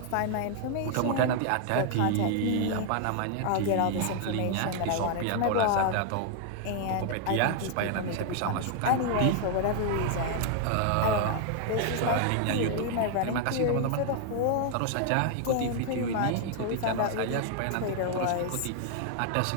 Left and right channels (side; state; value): both; different; correlation 0.00